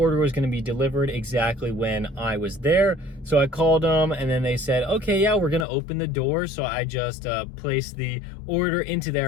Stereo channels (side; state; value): right; drops out; at 5.7 s